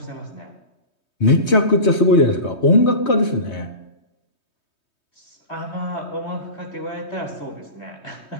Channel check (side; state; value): right; late; 3.2 ms